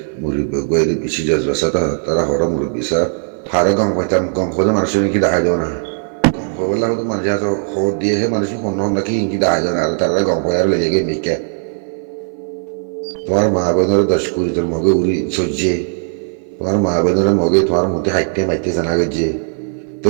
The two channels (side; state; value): left; silent; 56 dB below the other